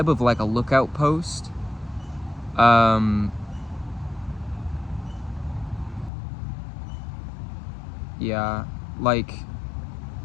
of like a lookout post. Yeah, like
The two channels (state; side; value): drops out; right; at 6.1 s